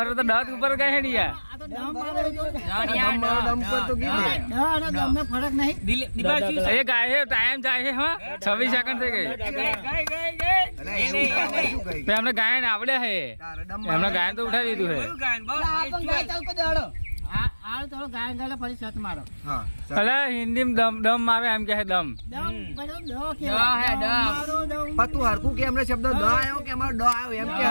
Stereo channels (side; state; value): both; inverted; correlation -1.00